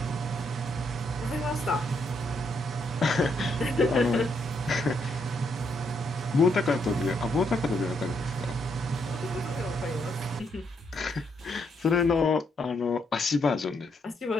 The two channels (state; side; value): normal; both; correlation 0.76